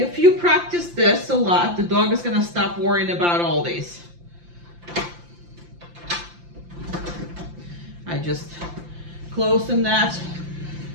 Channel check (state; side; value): late; left; 5.8 ms